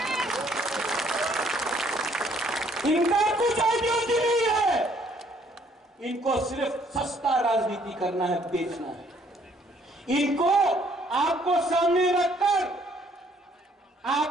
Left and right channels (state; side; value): normal; both; correlation 0.64